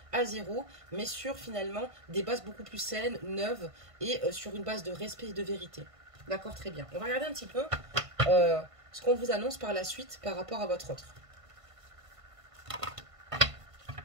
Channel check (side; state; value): left; late; 1.5 ms